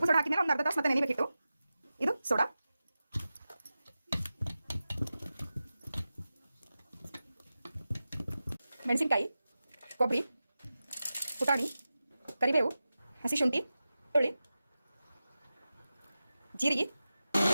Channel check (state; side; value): inverted; both; correlation -0.94